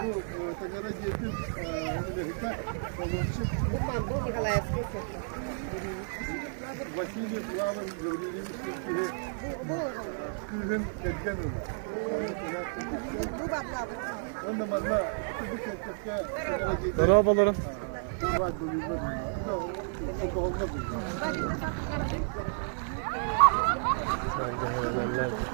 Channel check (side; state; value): left; silent; digital silence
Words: Bu Tagara Getir Amerika Kolonçuk Василий Плаван говорили, Kızın Kedgan'ı. Onda bana bu kekke Merhabalarım. var bölümde o kolda bu.